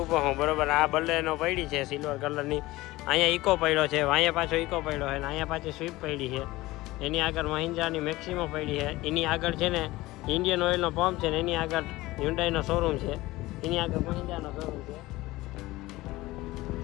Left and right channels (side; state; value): right; quieter; 18.9 dB